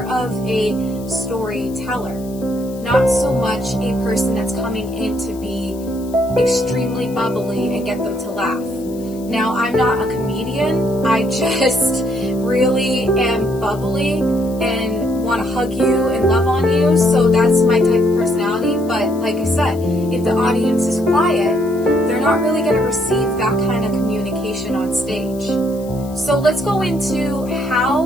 of a storyteller, not so much a person that's coming in to be extremely bubbly and get them to laugh. Now, I'm not a comedian. I just really am bubbly and want to hug you and love on you, so that's my type of personality. But like I said, if the audience is quiet, they're not really going to receive that kind of communication on stage. So let's go into how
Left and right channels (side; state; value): left; noise; hiss, 22 dB below the sound